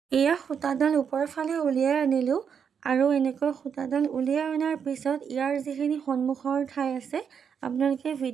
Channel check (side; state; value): left; quieter; 7.2 dB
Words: এয়া সূতাডাল ওপৰৰ ফালে উলিয়াই আনিলোঁ, আৰু এনেকৈ সূতাডাল উলিয়াই অনাৰ পিছত ইয়াৰ যিখিনি সন্মুখৰ ঠাই আছে আপোনালোকে